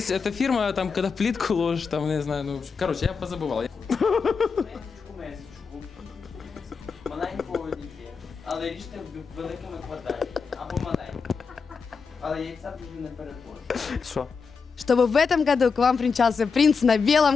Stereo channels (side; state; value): right; quieter; 5.3 dB